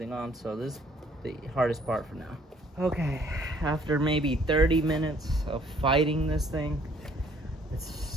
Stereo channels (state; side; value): normal; both; correlation 0.61